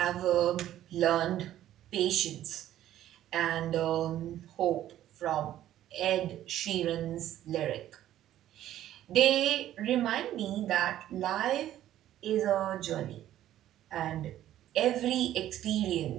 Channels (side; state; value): left; quieter; 12.6 dB